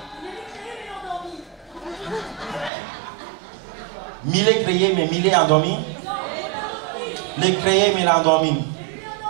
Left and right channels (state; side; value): drops out; left; at 2.7 s